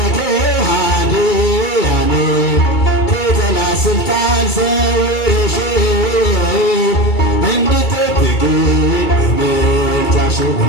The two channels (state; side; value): late; right; 2.3 ms